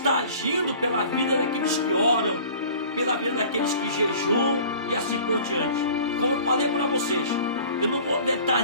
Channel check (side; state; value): both; inverted; correlation -0.45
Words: agindo pela vida daqueles que oram, pela vida daqueles que jejuam e assim por diante. Como eu falei para vocês, eu não vou